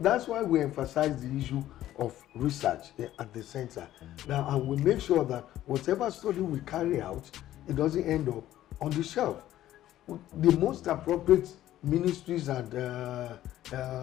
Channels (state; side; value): quieter; right; 13.4 dB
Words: why we emphasize the issue of research at the center. Now, and we make sure that whatever study we carry out, it doesn't end up on the shelf. The most appropriate ministries and